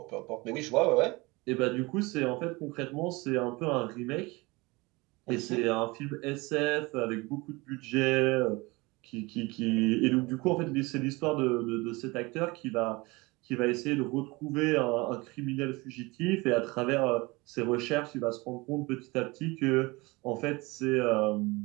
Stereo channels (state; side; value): quieter; left; 24.0 dB